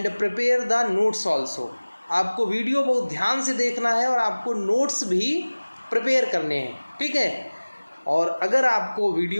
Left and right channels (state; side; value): inverted; both; correlation -1.00